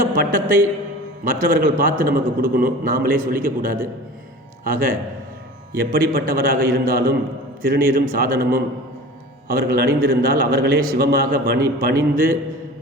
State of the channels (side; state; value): both; normal; correlation 0.38